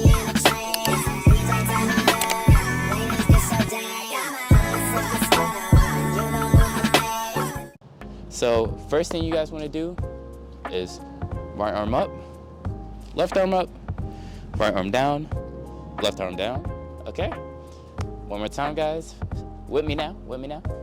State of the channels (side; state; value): both; identical; correlation 1.00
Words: So first thing you guys want to do is right arm up, left arm up, right arm down, left arm down. Okay? One more time, guys. With me now.